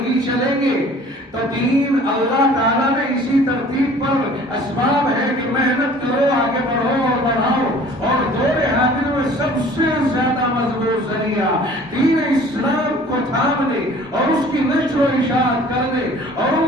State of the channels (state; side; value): normal; both; correlation 0.49